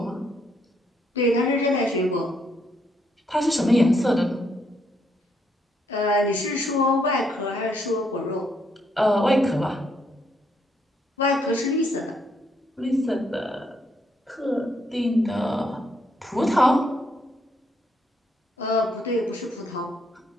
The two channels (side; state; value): both; normal; correlation 0.74